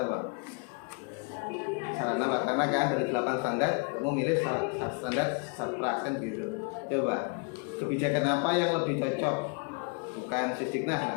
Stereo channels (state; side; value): quieter; right; 36.0 dB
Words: apa? Sarana kan dari 8 standar kamu milih standar Sarpras kan gitu. Coba kebijakan apa yang lebih cocok? Bukan sisdiknas